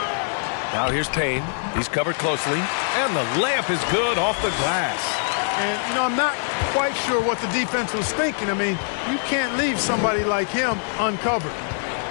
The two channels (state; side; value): silent; right; 63 dB below the other